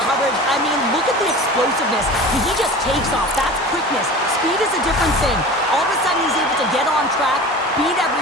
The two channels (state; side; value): normal; both; correlation 0.36